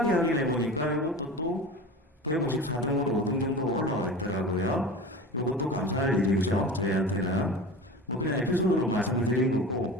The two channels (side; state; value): both; normal; correlation 0.33